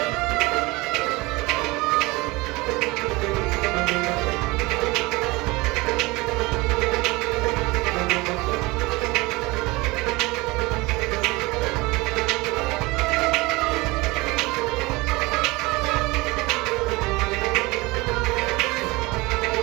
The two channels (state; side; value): quieter; left; 22.9 dB